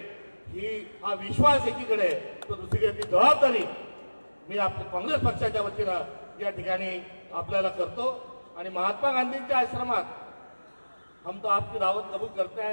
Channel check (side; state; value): both; inverted; correlation -1.00